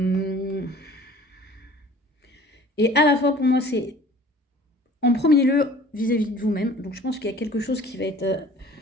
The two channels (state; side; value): normal; both; correlation 0.48